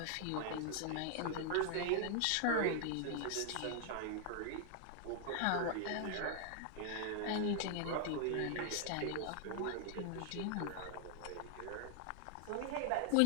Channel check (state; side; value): different; both; correlation 0.00